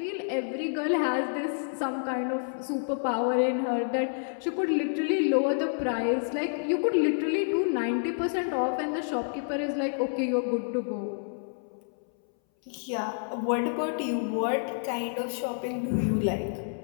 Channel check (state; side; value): silent; right; 59 dB below the other